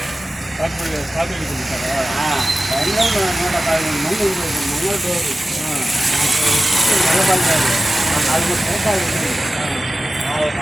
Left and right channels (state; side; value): normal; both; correlation 0.95